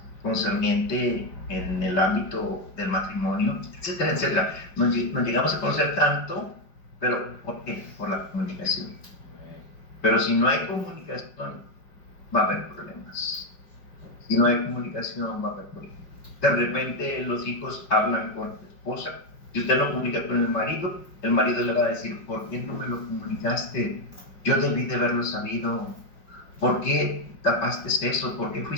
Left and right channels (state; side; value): late; right; 5.2 ms